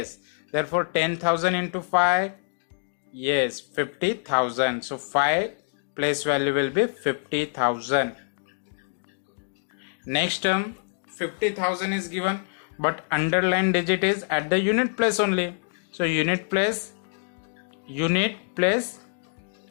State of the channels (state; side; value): silent; right; digital silence